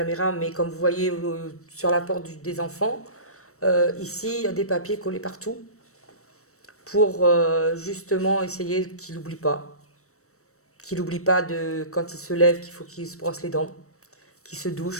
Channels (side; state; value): right; late; 0.64 ms